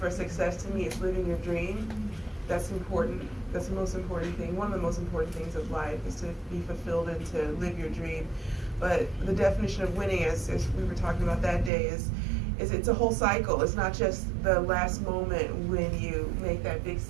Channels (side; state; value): left; drops out; at 11.7 s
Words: success to me is living your dream. That's important. That's the most important thing. One of the most important things of life is to be fulfilled and to live your dream. But the definition of winning, as we were talking about that day, is it's a whole cycle. It's not just the last moment when you make that big